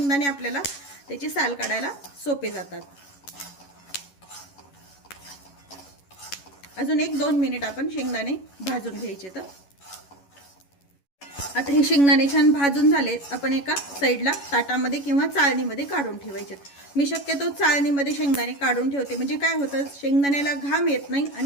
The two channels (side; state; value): right; late; 11 ms